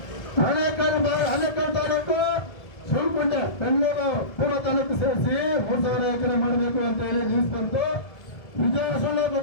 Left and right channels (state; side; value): late; right; 1.7 ms